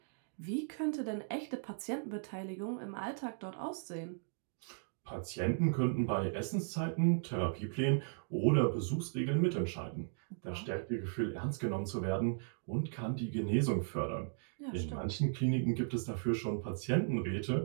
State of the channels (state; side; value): silent; left; digital silence